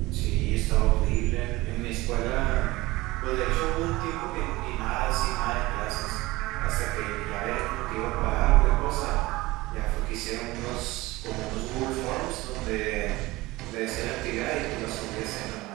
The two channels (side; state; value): left; quieter; 20.0 dB